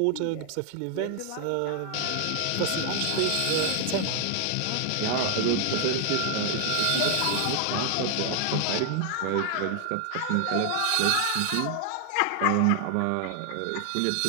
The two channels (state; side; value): different; both; correlation 0.00